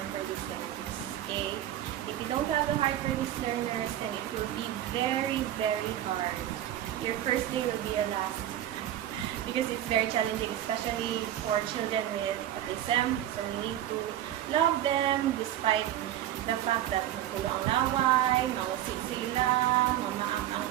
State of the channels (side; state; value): left; quieter; 12.3 dB